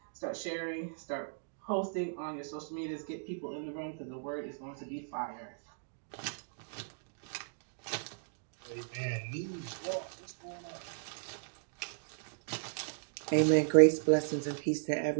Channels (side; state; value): left; silent; digital silence